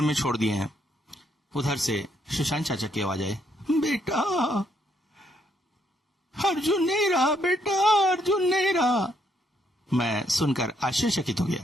में छोड़ दिए हैं। उधर से सुशांत चाचा की आवाज आई, बेटा अर्जुन नहीं रहा, बेटा अर्जुन नहीं रहा। मैं सुनकर आश्चर्यचकित हो गया।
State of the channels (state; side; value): normal; both; correlation 0.73